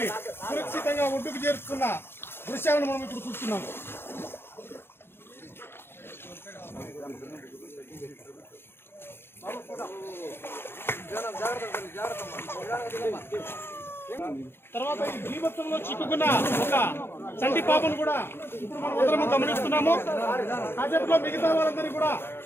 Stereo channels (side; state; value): right; late; 0.11 ms